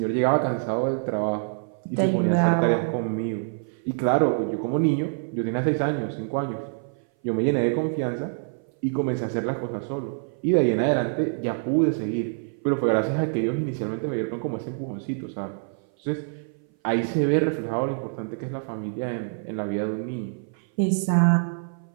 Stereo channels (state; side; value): silent; left; 58 dB below the other